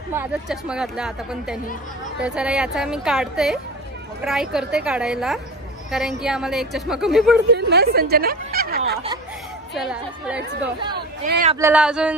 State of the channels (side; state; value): both; normal; correlation 0.31